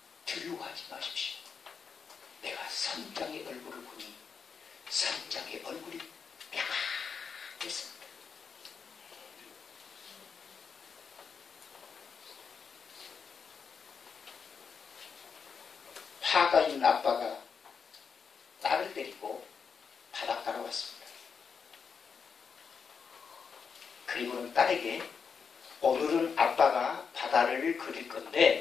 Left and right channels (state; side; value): quieter; right; 6.0 dB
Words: 두려워하지 마십시오. 내가 선장의 얼굴을 보니 선장의 얼굴이 평안했습니다. 화가 있는 아빠가 딸을 데리고 바닷가로 왔습니다. 그리고는 딸에게 오늘은 아빠가 바다를 그릴